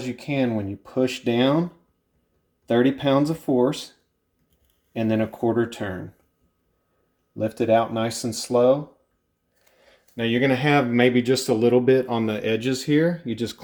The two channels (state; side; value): identical; both; correlation 1.00